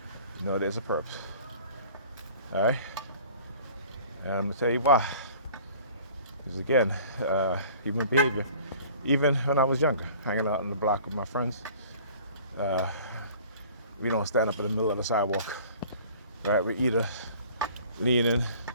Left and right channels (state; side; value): inverted; both; correlation -0.48